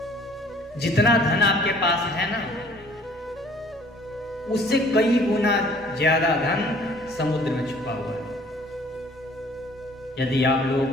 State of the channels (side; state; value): both; normal; correlation 0.55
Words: जितना धन आपके पास है ना, उससे कई गुना ज्यादा धन समुद्र में छुपा हुआ है। यदि आप लोगों